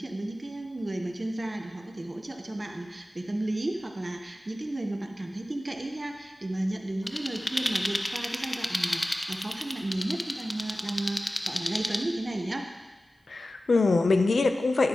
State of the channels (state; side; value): normal; both; correlation 0.96